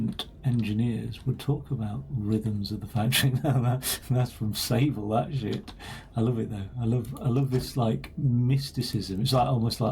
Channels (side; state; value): both; identical; correlation 1.00